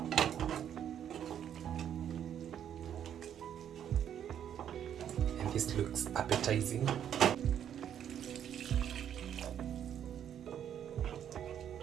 This looks appetizing.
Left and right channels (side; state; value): left; quieter; 9.5 dB